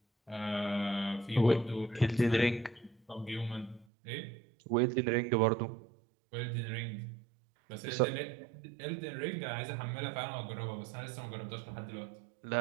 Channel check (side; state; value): left; drops out; at 3.9 s